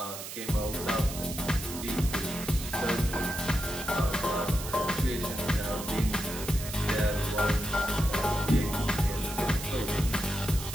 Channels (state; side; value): noise; right; hiss, 9 dB below the sound